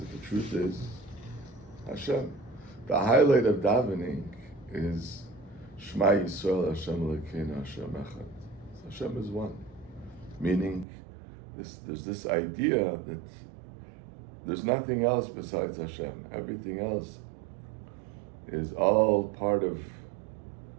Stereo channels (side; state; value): left; drops out; at 10.9 s